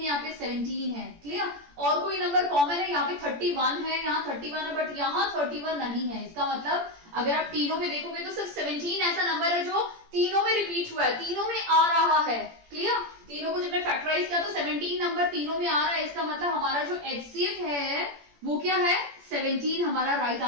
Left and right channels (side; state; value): left; late; 17 ms